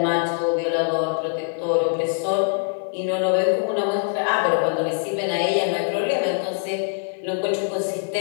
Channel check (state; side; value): silent; right; 63 dB below the other